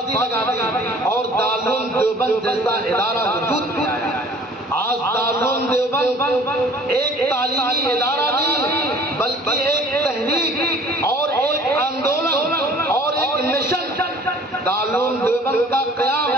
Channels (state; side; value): normal; both; correlation 0.51